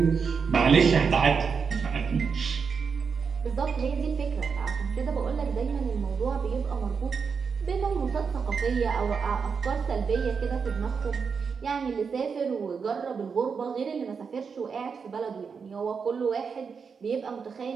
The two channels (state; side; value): quieter; left; 5.8 dB